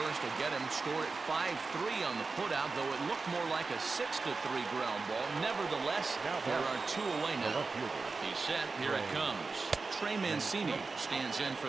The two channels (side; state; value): left; quieter; 4.1 dB